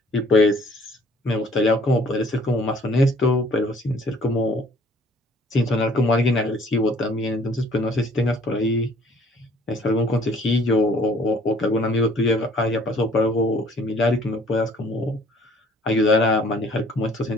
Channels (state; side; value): normal; both; correlation 0.57